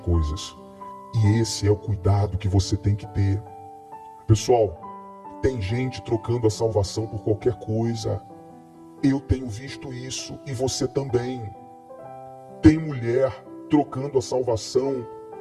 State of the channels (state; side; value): identical; both; correlation 1.00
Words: E esse é o cuidado que você tem que ter. Pessoal, tem gente trocando a salvação por qualquer coisa. Eu tenho visto isso e você também. Tem mulher trocando a salvação